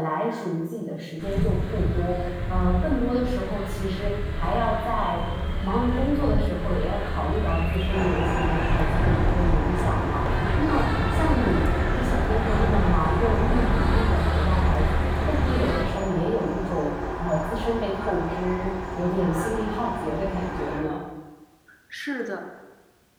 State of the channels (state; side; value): identical; both; correlation 1.00